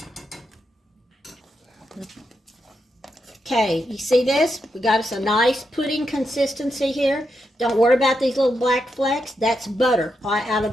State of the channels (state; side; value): normal; both; correlation 0.84